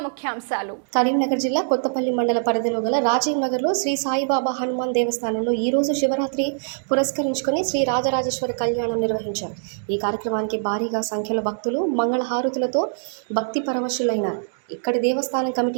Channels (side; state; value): left; silent; digital silence